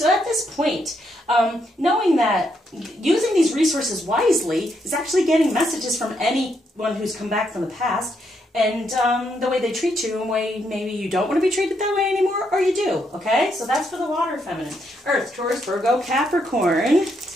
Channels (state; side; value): normal; both; correlation 0.77